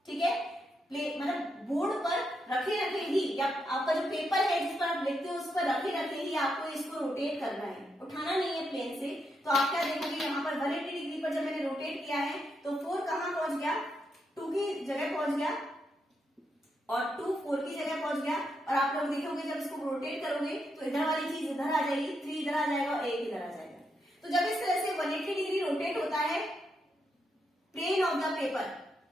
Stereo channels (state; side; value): normal; both; correlation 0.81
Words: ठीक है। प्लेन मतलब बोर्ड पर रखे रखे ही, या आपका जो पेपर है जिस पर आप लिखते हो उस पर रखे रखे ही आपको इसको रोटेट करना है, उठाना नहीं है प्लेन से। तो आप क्या देखोगे, यहाँ पर 180 डिग्री पर जब मैंने रोटेट किया है तो 4 कहाँ पहुंच गया, 2 की जगह पहुंच गया, और 2 4 की जगह पहुंच गया। और आप लोग देखोगे जब इसको रोटेट करोगे तो इधर वाली चीज इधर आ जाएगी, 3 इधर आ जाएगा और 1 इधर आ जाएगा। तो जब इस तरह से 180 डिग्री रोटेट होता है plane of the paper,